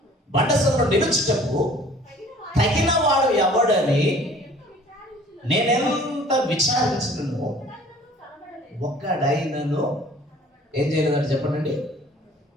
బండ సందులో నిలుచుటకు తగిన వాడు ఎవడని నేనెంత విచారించినను ఒక్కడైనను ఏం చేయలేదంటే చెప్పండి,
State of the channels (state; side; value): normal; both; correlation 0.51